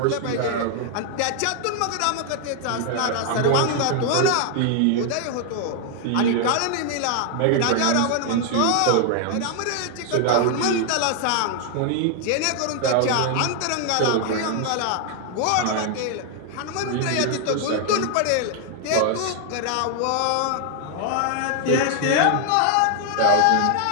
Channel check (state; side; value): different; both; correlation 0.00